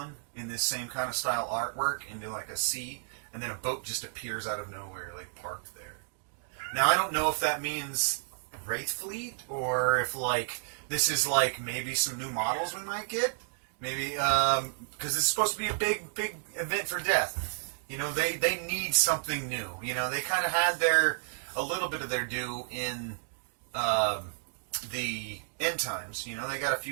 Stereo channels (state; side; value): silent; left; digital silence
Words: in this same kind of style artwork into like a sea, and then a boat just appears out of nowhere, like parked there. Now, I don't know if that means Wraith Fleet, or if like this is like maybe some new models we might get, maybe because this is supposed to be a big event for Death. They need something new. They kind of had a little bit of their due in the end times. They got a